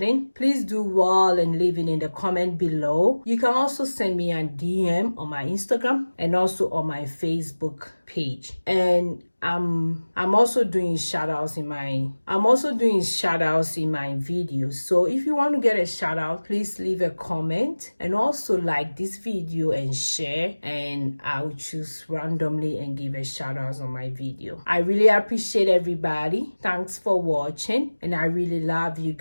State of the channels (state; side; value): inverted; both; correlation -1.00